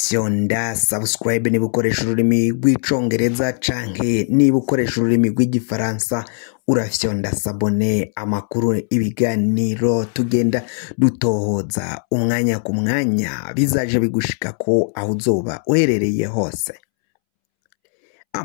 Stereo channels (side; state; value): right; silent; 67 dB below the other